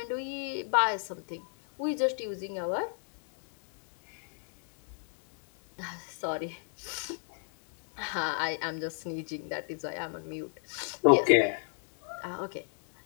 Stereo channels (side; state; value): right; silent; 55 dB below the other